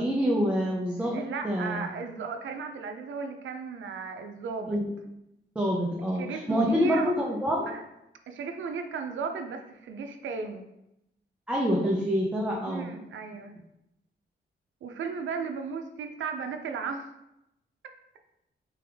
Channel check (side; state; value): both; normal; correlation 0.65